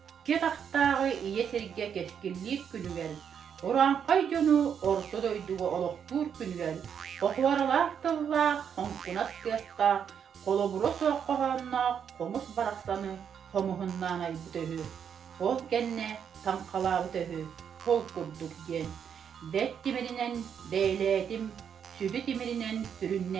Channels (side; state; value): left; quieter; 7.8 dB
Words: taktağı iye serge keskinlik günü gel. Oran kayconu orta doyduğu oluktur günü gel. Okuvarlar tılla, onkunas kıyasqa, koloburo soğuk kohanna, komus baraksanı, komuhunnan ay bütöhü. Kol genne, tankala bütöhü, kol kurduk gen. Det dimirinen deyledim, sübü dimirinen